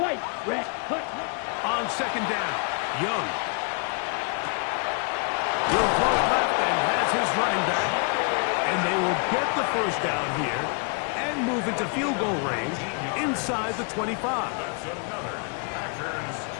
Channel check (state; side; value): quieter; right; 36.8 dB